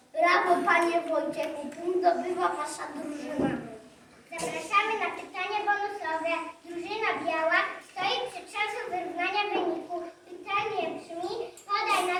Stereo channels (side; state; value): both; identical; correlation 1.00